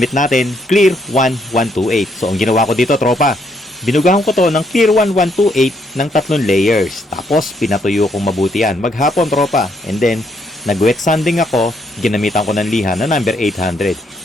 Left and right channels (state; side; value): normal; both; correlation 0.73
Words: natin, Clear 1128. So, ang ginawa ko dito, tropa, binugahan ko to ng Clear 1128 ng 3 layers. Tapos, pinatuyo kong mabuti yan. Maghapon, tropa. And then, nag-wet sanding ako, ginamitan ko ng liha na number